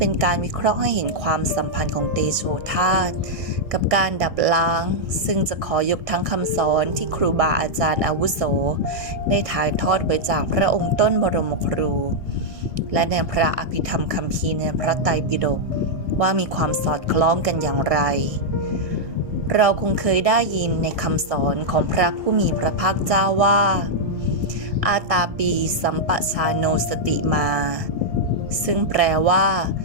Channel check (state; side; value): late; left; 1.7 ms